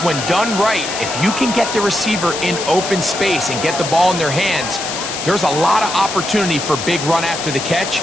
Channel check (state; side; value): noise; left; hiss, 6 dB below the sound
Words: when done right, if you can get the receiver in open space and get the ball in their hands, there's a lot of opportunity for big run after the catch